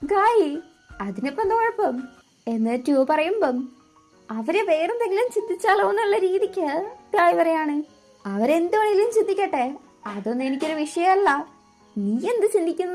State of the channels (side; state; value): both; identical; correlation 1.00